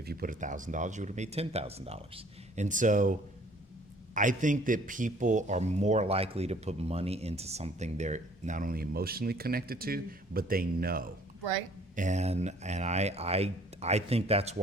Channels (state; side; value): normal; both; correlation 0.56